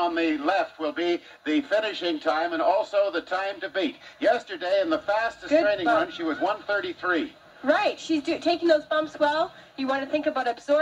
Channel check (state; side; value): identical; both; correlation 1.00